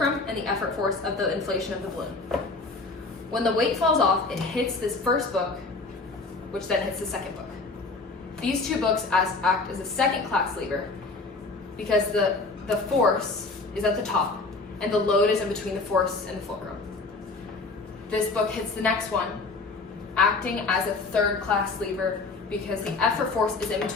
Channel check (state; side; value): quieter; right; 3.7 dB